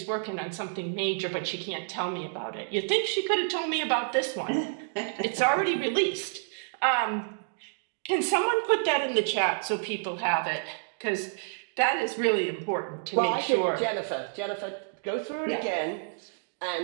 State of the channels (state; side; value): silent; left; digital silence